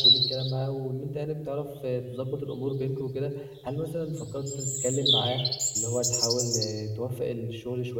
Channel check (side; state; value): both; identical; correlation 1.00